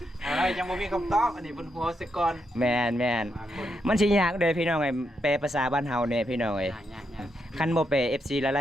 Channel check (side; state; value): both; normal; correlation 0.81